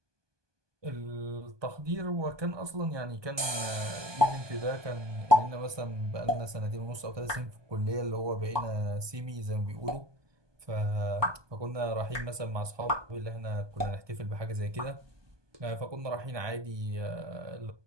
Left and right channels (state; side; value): late; left; 1.2 ms